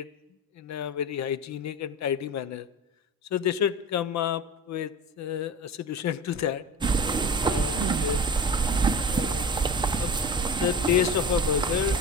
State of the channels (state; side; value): normal; both; correlation 0.33